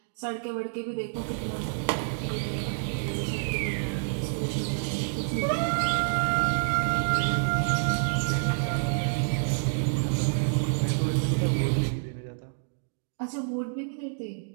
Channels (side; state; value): left; silent; digital silence